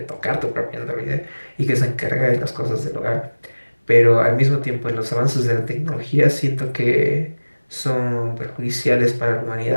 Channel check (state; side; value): inverted; both; correlation -1.00